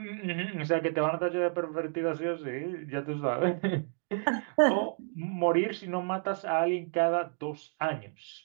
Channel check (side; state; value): left; silent; 57 dB below the other